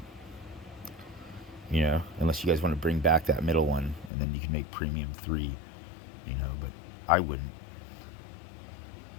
Unless you guys want to bring back that middle one, and then you can make premium 3. But I wouldn't,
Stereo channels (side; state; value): right; drops out; at 4.1 s